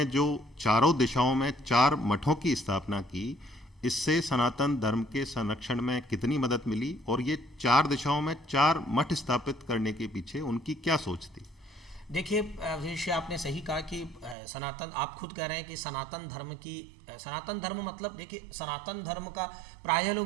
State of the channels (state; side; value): drops out; left; at 14.4 s